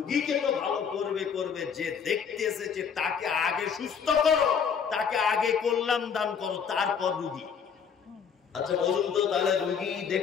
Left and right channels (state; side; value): quieter; right; 6.9 dB